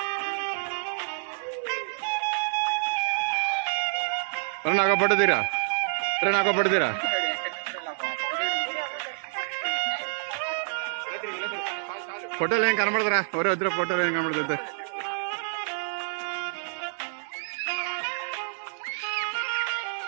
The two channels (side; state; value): left; silent; digital silence